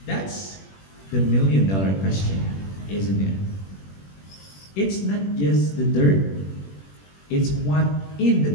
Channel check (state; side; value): late; right; 21 ms